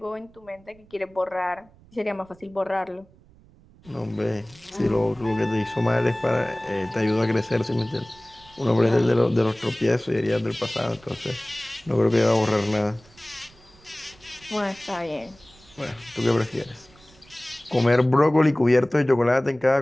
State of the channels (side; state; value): right; noise; rumble, 27 dB below the sound